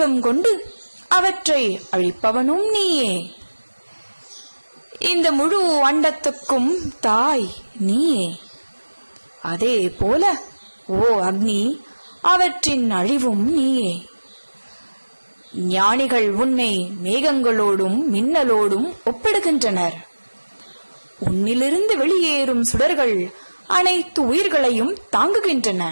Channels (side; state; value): both; inverted; correlation -1.00